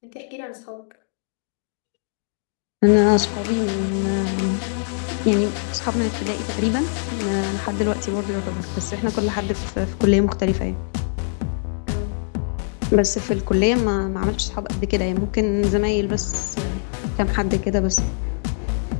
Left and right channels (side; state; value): right; silent; digital silence